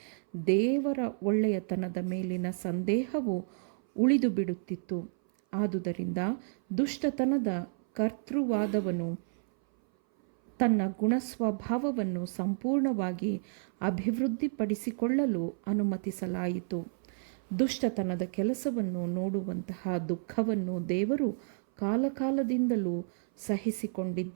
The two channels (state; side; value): silent; left; 57 dB below the other